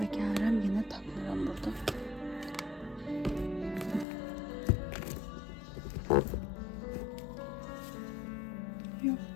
gəlirəm yenə tapmıram burada.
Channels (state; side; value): drops out; right; at 4.0 s